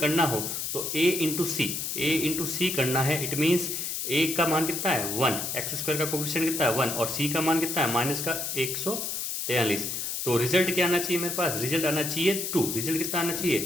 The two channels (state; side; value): noise; left; hiss, 3 dB below the sound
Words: करना हो तो a × c करना है। इट मीन्स a का मान कितना है? 1, x² का कोफिशिएंट कितना है? 1, और c का मान कितना है? माइनस का 143। तो रिजल्ट क्या आना चाहिए मेरे पास? रिजल्ट आना चाहिए 2। रिजल्ट कितना आना चाहिए?